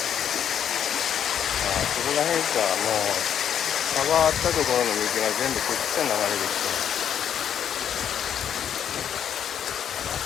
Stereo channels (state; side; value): quieter; right; 9.1 dB